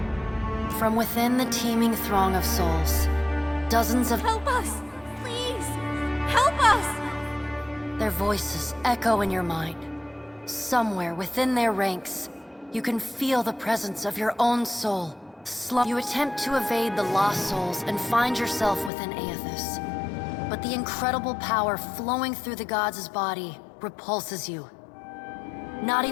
From within the teeming throng of souls, dozens of... Help us! Please! Help us! Their voices echo in your mind. Somewhere within their ranks, you can feel the presence of your own soul. You attempt to evade the lost souls and find yourself within Aethys. But the incredible power flowing through the god's body repulses you. Not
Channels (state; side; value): drops out; right; at 18.9 s